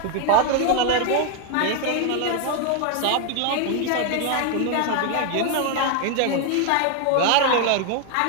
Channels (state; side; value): different; both; correlation 0.01